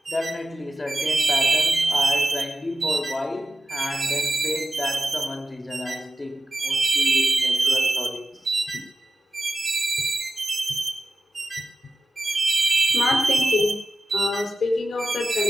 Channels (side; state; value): both; normal; correlation 0.94